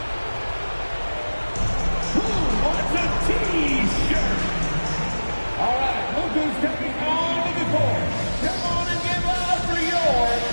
T-shirt. All right, look who's coming onto the court. Come on and give up for your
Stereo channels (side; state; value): both; inverted; correlation -1.00